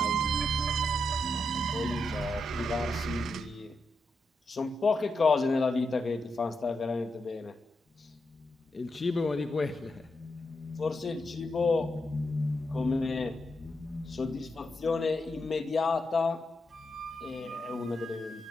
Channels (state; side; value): normal; both; correlation 0.85